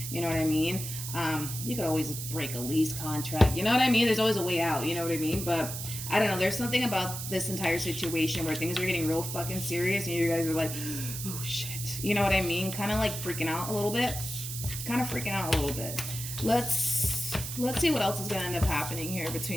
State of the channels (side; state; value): right; noise; hiss, 6 dB below the sound